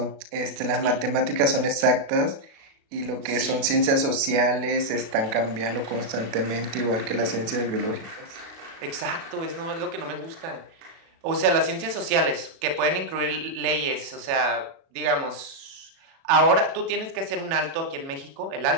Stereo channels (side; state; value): left; late; 36 ms